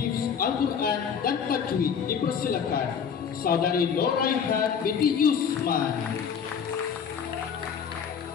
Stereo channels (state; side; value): quieter; right; 7.2 dB